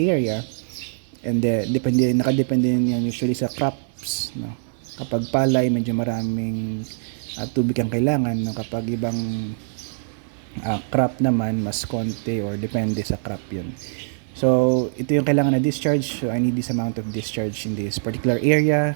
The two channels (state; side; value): silent; left; digital silence